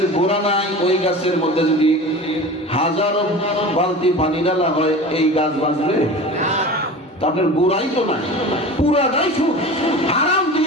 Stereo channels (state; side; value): normal; both; correlation 0.35